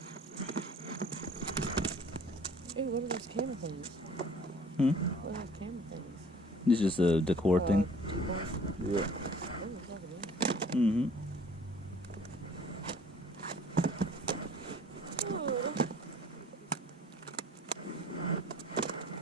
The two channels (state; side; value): normal; both; correlation 0.51